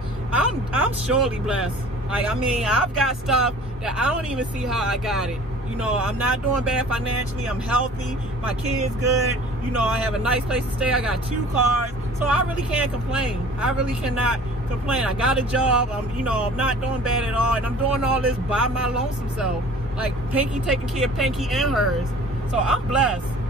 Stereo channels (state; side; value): normal; both; correlation 0.46